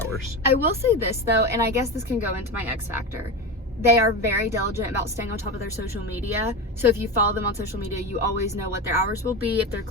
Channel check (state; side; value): normal; both; correlation 0.22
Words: I will say this though, and I guess this can go into my X Factor. They are very diligent about staying on top of their social media. So if you follow them on social media, you always know what their hours will be, if they're